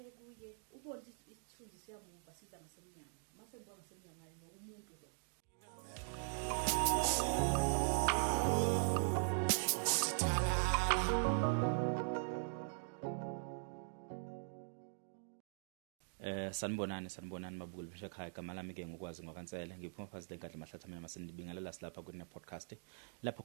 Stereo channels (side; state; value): left; silent; digital silence